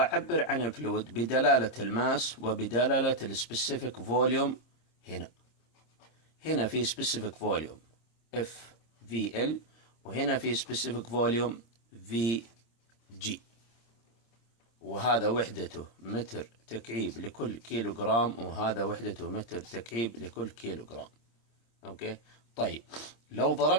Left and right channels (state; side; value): late; right; 26 ms